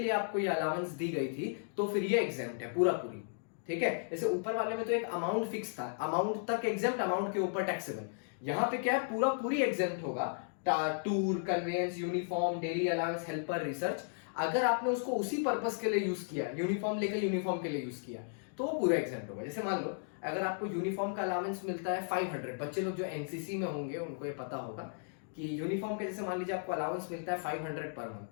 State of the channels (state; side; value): silent; right; digital silence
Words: लिए आपको ये अलाउंस दी गई थी तो फिर ये एग्जेम्प्ट है पूरा पूरी। ठीक है, जैसे ऊपर वाले में तो एक अमाउंट फिक्स था, अमाउंट तक एग्जेम्प्ट, अमाउंट के ऊपर टैक्सेबल, यहां पे क्या है पूरा पूरी एग्जेम्प्ट होगा, tour, conveyance, uniform, daily allowance, helper, research. अगर आपने उसको उसी पर्पस के लिए यूज किया, यूनिफॉर्म लेकर यूनिफॉर्म के लिए यूज किया तो वो पूरा एग्जेम्प्ट होगा। जैसे मान लो अगर आपको यूनिफॉर्म का अलाउंस मिलता है 500, बच्चे लोग जो एनसीसी में होंगे उनको ये पता होगा कि यूनिफॉर्म के जैसे मान लीजिए आपको अलाउंस मिलता है 500 पर